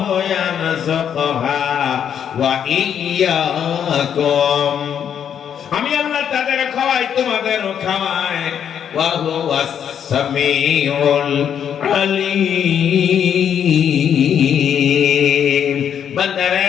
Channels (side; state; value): right; quieter; 8.6 dB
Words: ইয়ারযুকুহা ওয়া ইয়্যাকুম, আমি আল্লাহ তাদের খাওয়াই, তোমাদেরও খাওয়াই। ওয়া হুয়াস সামিউল আলীম।